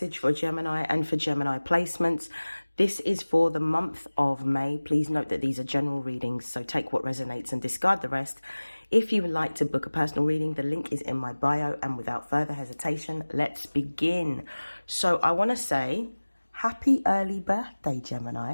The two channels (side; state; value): both; inverted; correlation -1.00